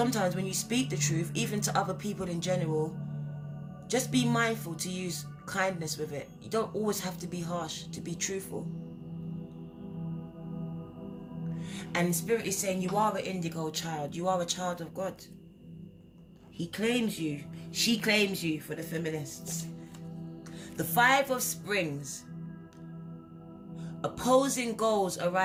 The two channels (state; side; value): identical; both; correlation 1.00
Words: when you speak the truth, even to other people in general, just be mindful to use kindness with it. You don't always have to be harsh to be truthful. And Spirit is saying you are an indigo child. You are a child of God. He claims you. She claims you for the feminists. The 5 of Springs. Opposing goals